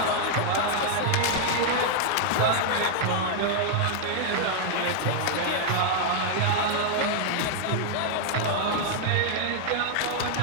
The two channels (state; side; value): different; both; correlation -0.01